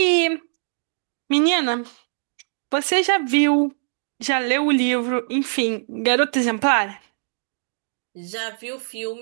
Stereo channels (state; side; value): silent; left; digital silence